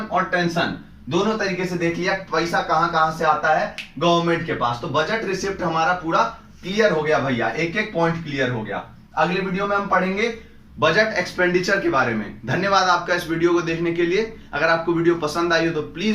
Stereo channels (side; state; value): both; identical; correlation 1.00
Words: और टेंशन दोनों तरीके से देख लिया, पैसा कहां कहां से आता है गवर्नमेंट के पास। तो बजट रिसिप्ट हमारा पूरा क्लियर हो गया भैया, एक एक पॉइंट क्लियर हो गया। अगले वीडियो में हम पढ़ेंगे बजट एक्सपेंडिचर के बारे में। धन्यवाद आपका इस वीडियो को देखने के लिए। अगर आपको वीडियो पसंद आई हो तो